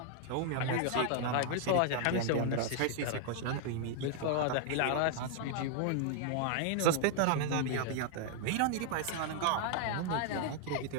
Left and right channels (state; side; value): different; both; correlation 0.00